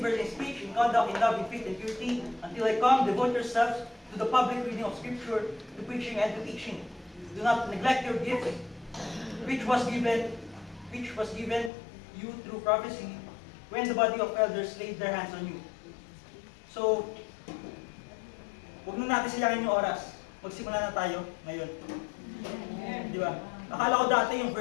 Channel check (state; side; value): drops out; right; at 11.7 s